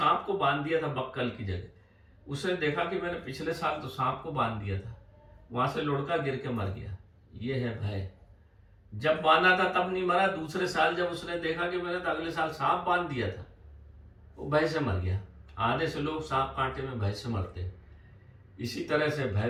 को बांध दिया था बक्कल की जगह। उसने देखा कि मैंने पिछले साल तो सांप को बांध दिया था, वहां से लुढ़का गिर के मर गया। ये है भय। जब बांधा था तब नहीं मरा, दूसरे साल जब उसने देखा कि मैंने तो अगले साल सांप बांध दिया था, वो भय से मर गया। आधे से लोग सांप कांटे में भय से मरते हैं। इसी तरह से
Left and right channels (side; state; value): both; identical; correlation 1.00